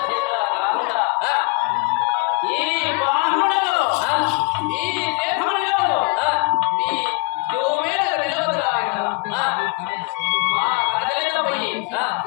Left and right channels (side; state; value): right; quieter; 30.0 dB